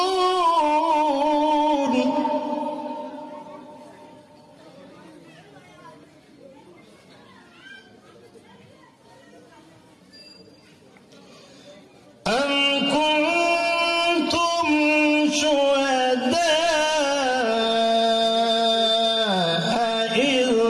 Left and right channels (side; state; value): both; identical; correlation 1.00